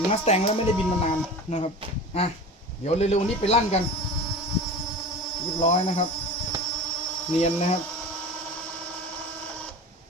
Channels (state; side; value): normal; both; correlation 0.34